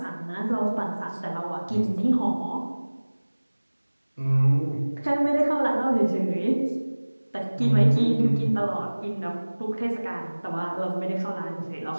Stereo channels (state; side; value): inverted; both; correlation -1.00